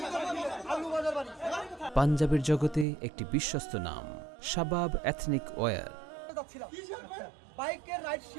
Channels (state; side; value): drops out; left; at 2.9 s